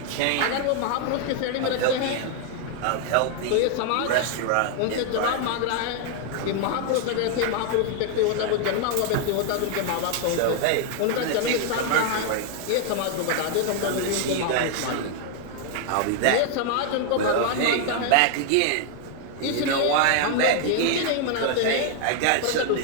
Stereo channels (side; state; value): both; different; correlation 0.00